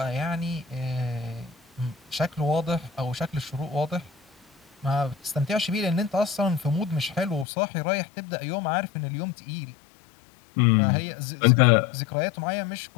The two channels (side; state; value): right; drops out; at 7.5 s